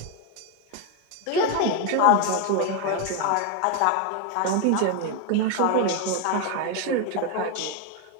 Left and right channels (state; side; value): different; both; correlation 0.02